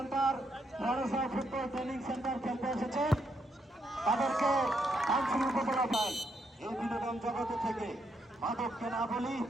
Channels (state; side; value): normal; both; correlation 0.78